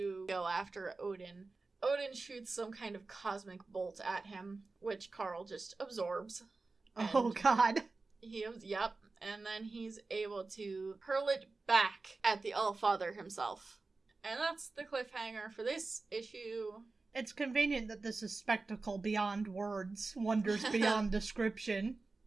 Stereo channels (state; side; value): quieter; left; 3.7 dB